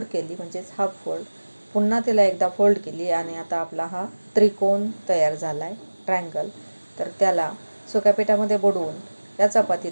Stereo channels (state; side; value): inverted; both; correlation -1.00